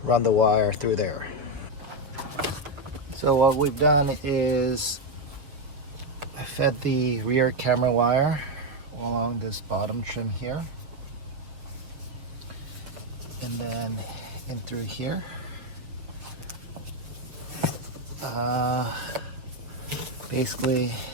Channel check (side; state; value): left; late; 6.9 ms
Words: run the wire through there. So what we've done is I fed the rear camera wire along this bottom trim here. and then in through here. Basically,